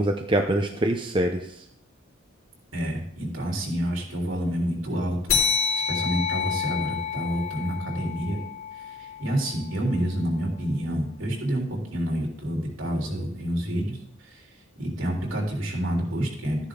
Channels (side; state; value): both; normal; correlation 0.65